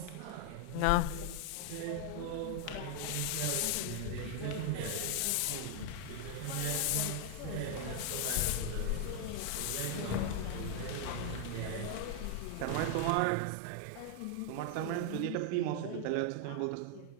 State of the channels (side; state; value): both; different; correlation 0.00